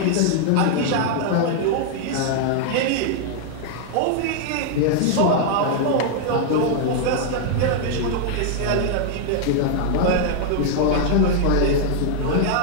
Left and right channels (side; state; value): both; different; correlation -0.01